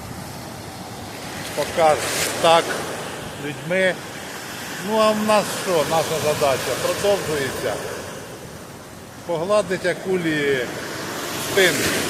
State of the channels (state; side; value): identical; both; correlation 1.00